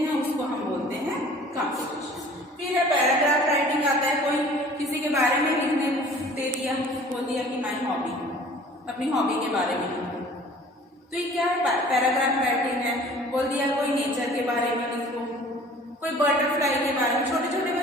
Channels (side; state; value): both; normal; correlation 0.49